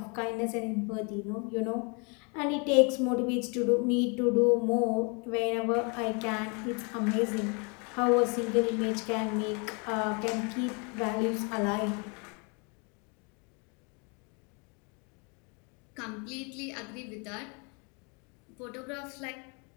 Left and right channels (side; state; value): right; quieter; 33.5 dB